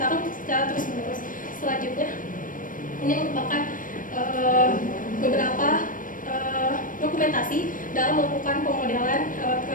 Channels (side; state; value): right; late; 0.39 ms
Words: secara terus-menerus. Selanjutnya, ini merupakan beberapa dokumentasi dalam melakukan pemodelan